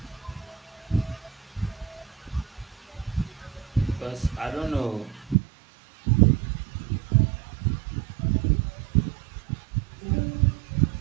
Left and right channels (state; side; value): drops out; left; at 5.4 s